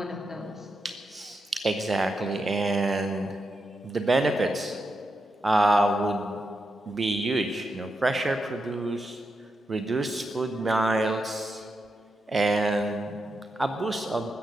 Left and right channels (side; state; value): both; normal; correlation 0.86